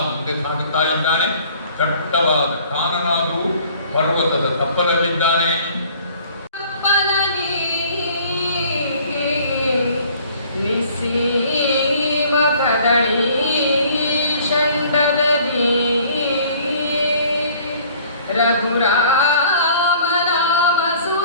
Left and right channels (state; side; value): inverted; both; correlation -0.54